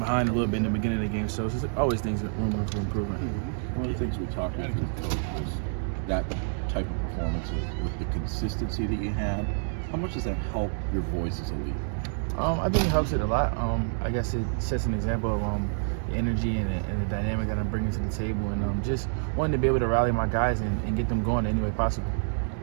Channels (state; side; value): silent; left; 59 dB below the other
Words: a little bit in the beginning of the game. So it's always things that room for improvement. One of the things we talked about with the coach was that type of performance with the consistency that you had. How much does that help your voice as a leader? I think it helps it a lot. I guess it sets an example of the energy and the dynamic that I'm bringing to the table, and just wanting to be able to rally my guys and get them going any way possible.